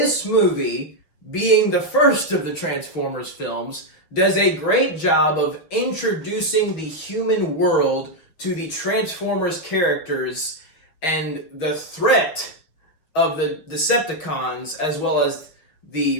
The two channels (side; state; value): right; late; 6.4 ms